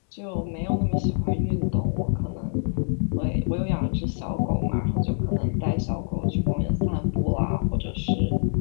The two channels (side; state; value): right; silent; digital silence